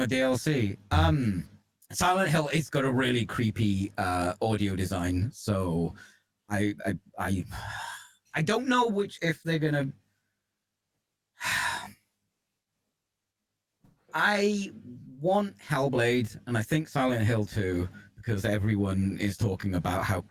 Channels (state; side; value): identical; both; correlation 1.00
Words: a DLC. Silent Hill, it's got a really creepy audio design, so I don't know if they're gonna. I want Hellblade, and I think Silent Hill 2. because everyone is talking about how